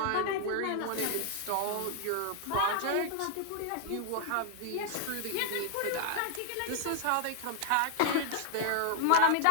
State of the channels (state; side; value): different; both; correlation 0.00